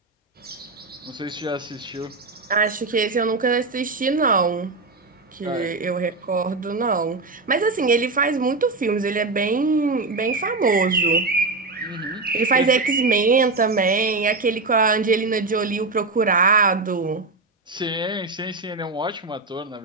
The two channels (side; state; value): left; quieter; 3.6 dB